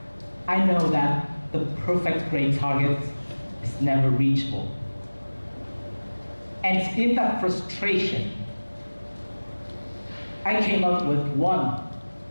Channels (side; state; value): both; inverted; correlation -1.00